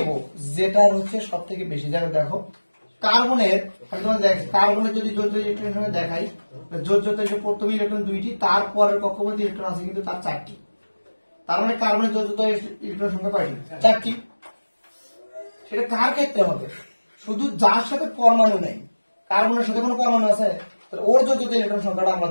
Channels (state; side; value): inverted; both; correlation -1.00